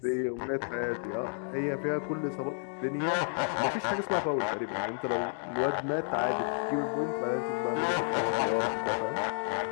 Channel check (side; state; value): right; silent; 57 dB below the other